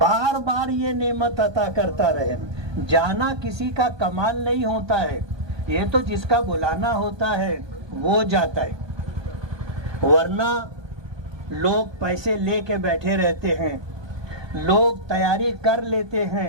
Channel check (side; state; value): left; late; 1.2 ms